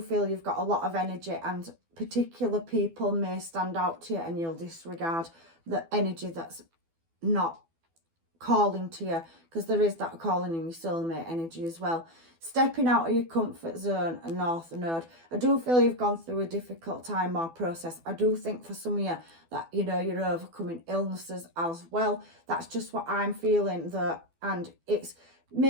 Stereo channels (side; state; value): left; late; 12 ms